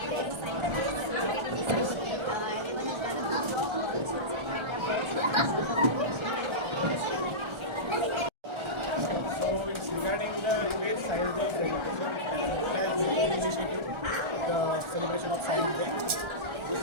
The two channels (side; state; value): left; late; 1.3 ms